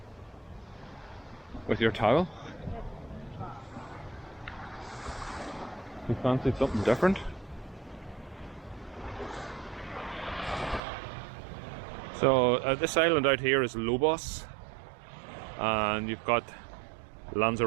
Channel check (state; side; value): drops out; left; at 10.8 s